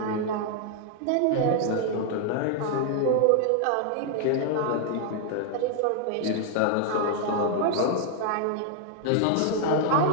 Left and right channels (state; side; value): different; both; correlation 0.00